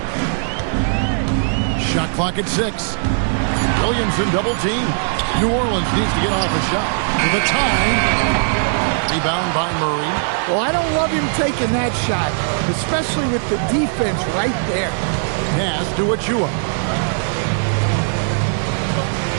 Shot clock at 6. Williamson double team. New Orleans needs to get off a shot. For the time. Rebound by Murray. Well, I don't love him taking that shot, especially with the defense right there. Pass to Achua.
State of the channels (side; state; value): left; silent; digital silence